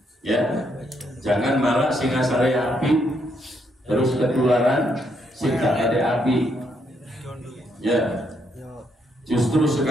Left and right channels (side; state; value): both; normal; correlation 0.75